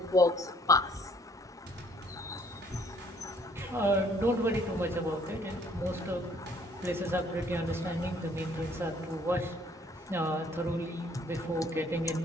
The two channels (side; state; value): both; normal; correlation 0.62